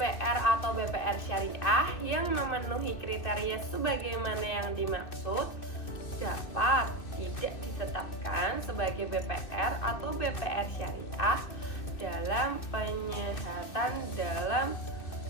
atau BPR syariah yang memenuhi kriteria sebagaimana yang dimaksud dapat tidak ditetapkan sebagai BPR atau BPR syariah dalam penyehatan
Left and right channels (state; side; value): late; right; 2.6 ms